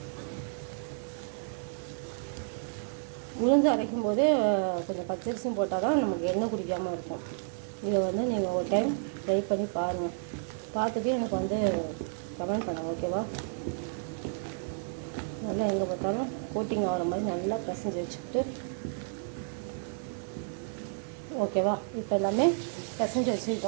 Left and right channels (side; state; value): left; silent; 57 dB below the other